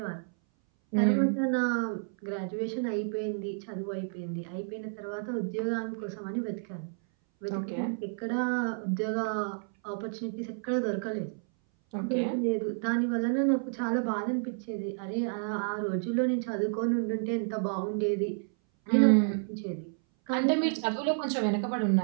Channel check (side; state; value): left; silent; 58 dB below the other